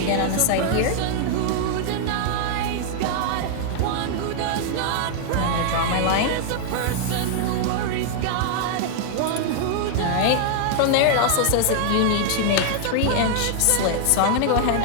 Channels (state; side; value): different; both; correlation -0.01